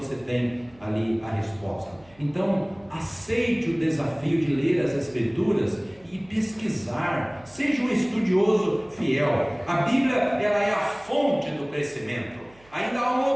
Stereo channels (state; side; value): noise; right; hum, 28 dB below the sound